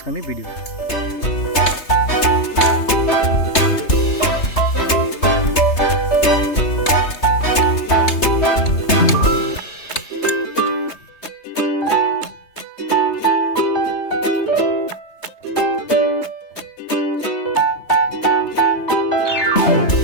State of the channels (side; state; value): right; late; 3.3 ms